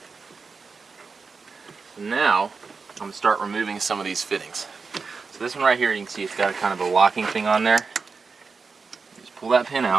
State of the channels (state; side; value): quieter; left; 4.8 dB